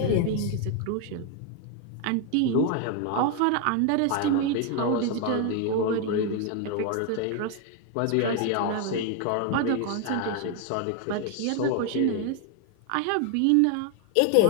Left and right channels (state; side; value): different; both; correlation 0.01